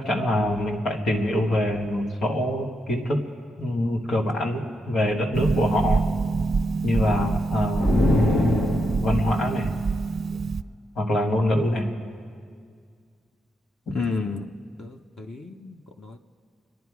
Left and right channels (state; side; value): normal; both; correlation 0.82